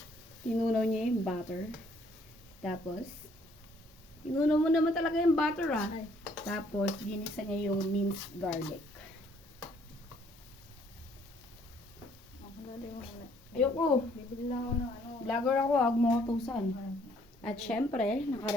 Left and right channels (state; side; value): normal; both; correlation 0.64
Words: tinunaw niya yung butter. Tapos, tinunaw mo naman talaga yung butter ah. Tapos, ginisa niya yung minced garlic. Ayoko. Bibili lang ako ng ano. Vlogger ako, huwag mo utusan. At syempre,